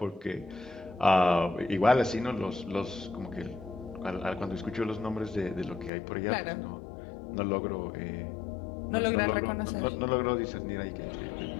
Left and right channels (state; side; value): drops out; right; at 5.9 s